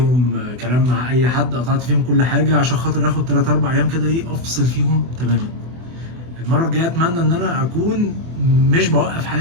كلام مع اي حد، قطعت فيهم كل حاجه عشان خاطر اخد 3 4 ايام كده ايه افصل فيهم تماما. المره الجايه اتمنى ان انا اكون مش بوقف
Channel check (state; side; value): late; left; 24 ms